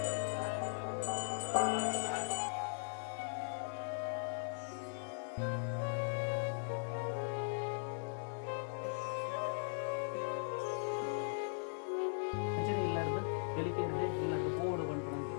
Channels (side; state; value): right; silent; digital silence